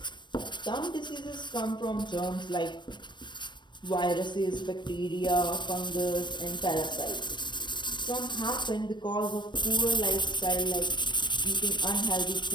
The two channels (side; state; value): right; late; 0.22 ms